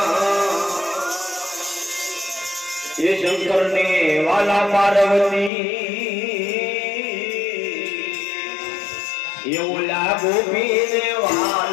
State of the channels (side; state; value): right; drops out; at 5.5 s